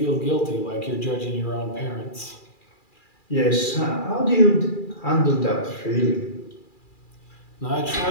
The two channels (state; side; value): late; right; 2.4 ms